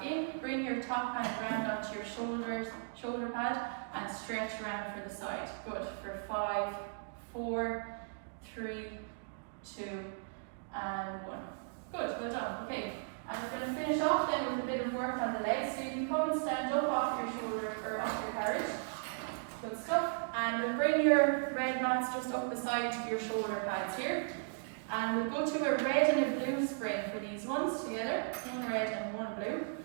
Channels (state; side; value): silent; left; digital silence